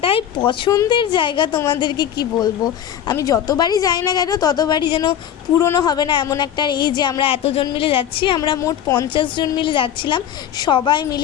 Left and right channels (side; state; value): right; quieter; 10.1 dB